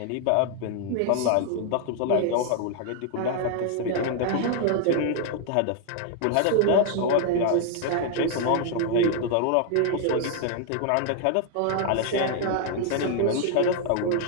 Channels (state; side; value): different; both; correlation 0.00